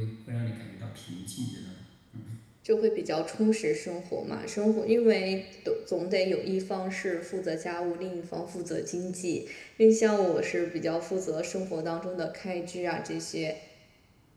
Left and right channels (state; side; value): identical; both; correlation 1.00